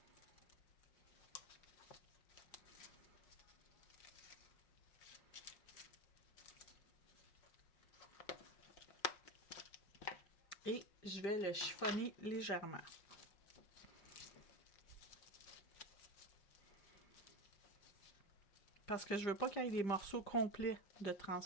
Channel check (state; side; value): late; right; 5.5 ms